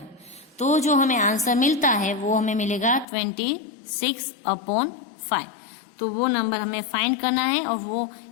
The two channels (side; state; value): right; drops out; at 3.1 s